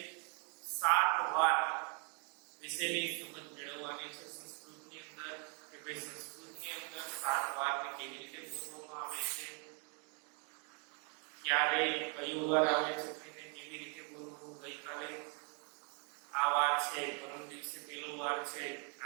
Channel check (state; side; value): quieter; left; 37.8 dB